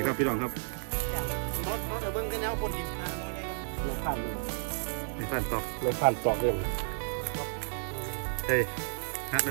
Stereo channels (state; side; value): silent; left; 56 dB below the other